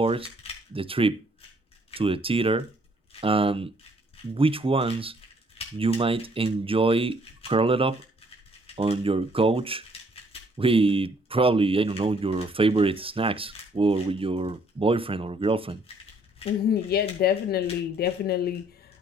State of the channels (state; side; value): normal; both; correlation 0.64